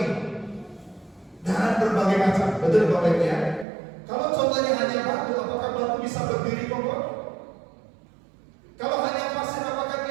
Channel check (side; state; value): left; drops out; at 3.7 s